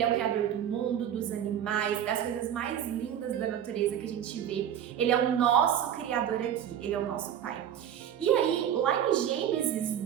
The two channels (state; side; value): quieter; left; 9.8 dB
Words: é o criador do mundo, dos animais, das coisas mais lindas da natureza que a gente vê. Ele é o nosso criador aqui, ele é o nosso pai. E aí, lá em